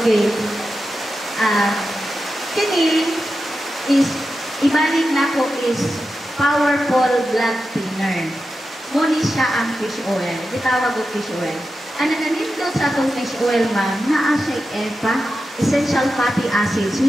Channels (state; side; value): normal; both; correlation 0.90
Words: Kini is ibalik nako is powerful blood thinner. Muni siya ang fish oil. Gitawag og fish oil. Ang nanindot sa atong fish oil ma'am, naa siya EPA, essential fatty acids,